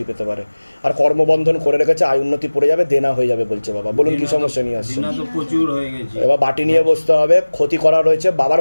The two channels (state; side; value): inverted; both; correlation -1.00